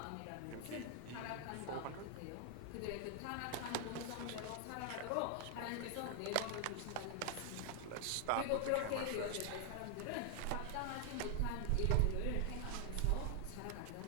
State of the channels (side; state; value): both; different; correlation 0.00